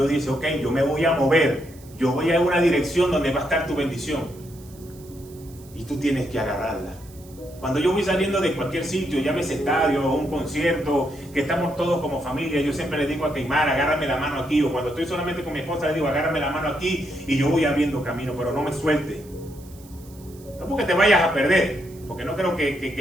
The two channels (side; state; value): right; noise; hiss, 24 dB below the sound